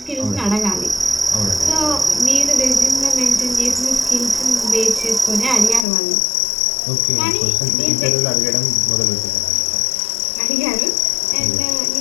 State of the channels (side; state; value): right; drops out; at 5.9 s